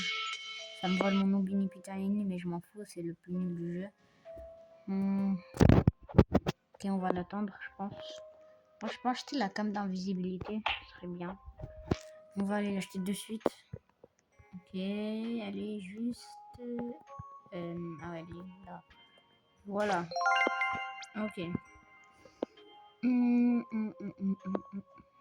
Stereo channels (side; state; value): both; identical; correlation 1.00